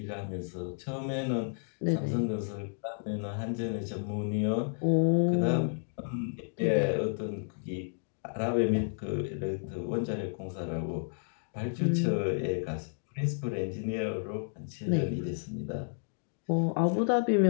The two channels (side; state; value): right; silent; digital silence